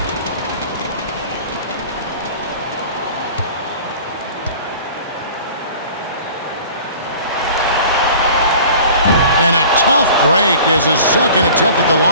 And a tough break is his second attempt at the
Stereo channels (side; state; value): both; inverted; correlation -0.44